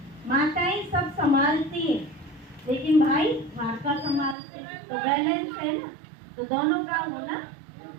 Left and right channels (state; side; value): drops out; left; at 4.4 s